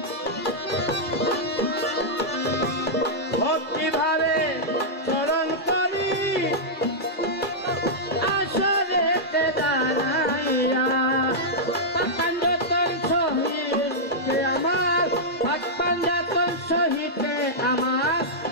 ভক্তিভাবে স্মরণ করি আসলে দাঁড়াইয়া পাঞ্জাতন সহিতে আমার পাঞ্জাতন সহিতে আমার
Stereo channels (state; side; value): late; right; 2.1 ms